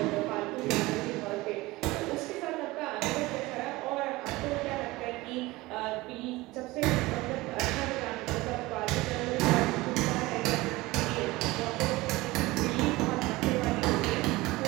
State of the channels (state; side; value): quieter; left; 20.4 dB